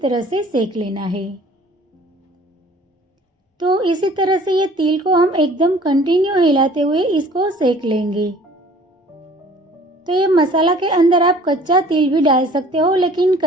से सेक लेना है। तो इसी तरह से ये तिल को हम एकदम कंटिन्यू हिलाते हुए इसको सेक लेंगे। तो ये मसाला के अंदर आप कच्चा तिल भी डाल सकते हो, लेकिन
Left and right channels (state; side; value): normal; both; correlation 0.51